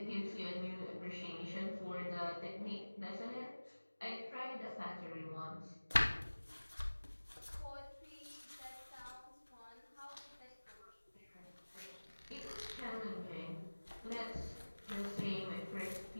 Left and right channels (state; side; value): inverted; both; correlation -1.00